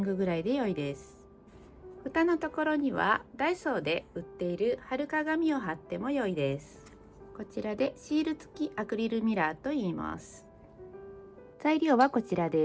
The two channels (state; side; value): identical; both; correlation 1.00